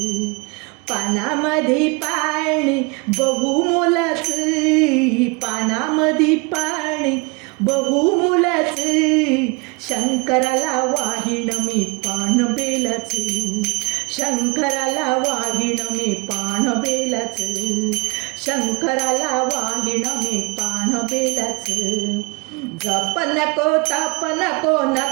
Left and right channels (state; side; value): quieter; left; 28.3 dB